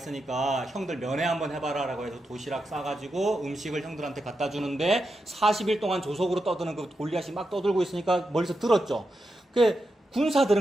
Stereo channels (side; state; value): both; normal; correlation 0.87